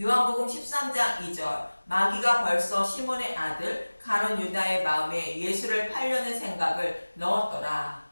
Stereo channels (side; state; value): both; inverted; correlation -1.00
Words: 13장 2절 마귀가 벌써 시몬의 아들 가룟 유다의 마음에 예수를 팔려는 생각을 넣었더라.